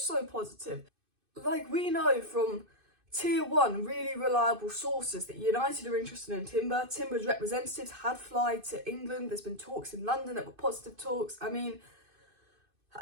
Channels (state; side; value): late; left; 2.5 ms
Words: positive. Like, we know from Tier 1, really reliable sources that United are interested in Timber. Timber's representatives had flied to England. There's been talks in London that were positive talks. I mean,